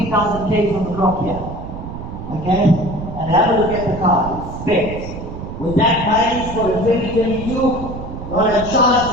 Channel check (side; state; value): right; noise; rumble, 9 dB below the sound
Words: Ks on the clock here. Okay? And have a look at the car. It's specs. With that mileage for the 2022, not a